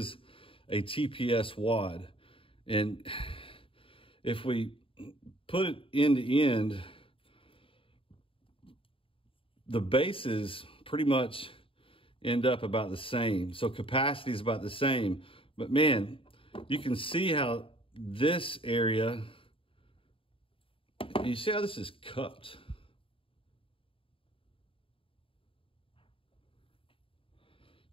a TPS wad. And if we put it end to end, the bases pretty much end up about the same. So capacity is about the same. But man, you can see how this area, you see how this is cupped.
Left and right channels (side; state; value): right; late; 0.26 ms